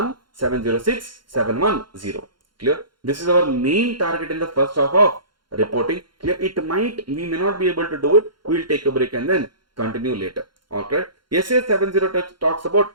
706, 710. Clear? This is our main target in the first half of reporting. Clear? We may not be able to do it. We will take a break and then continue later. Okay. SA 70 talks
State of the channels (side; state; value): left; late; 0.72 ms